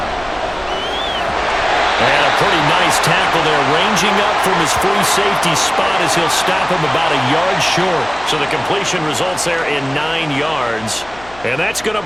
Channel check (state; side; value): noise; left; hum, 21 dB below the sound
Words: And a pretty nice tackle there, ranging up from his free safety spot as he'll stop him about a yard short. So the completion results there in 9 yards. And that's going to